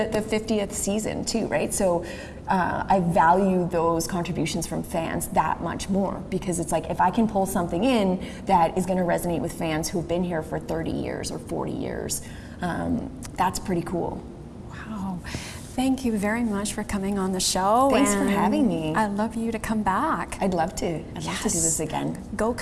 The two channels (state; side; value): identical; both; correlation 1.00